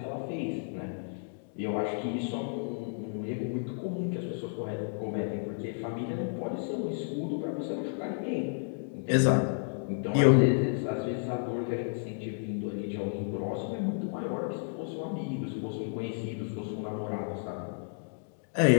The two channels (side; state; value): right; silent; digital silence